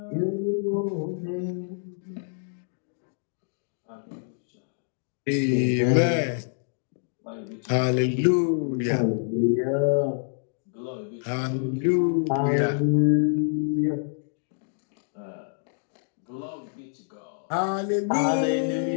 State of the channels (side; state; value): right; silent; digital silence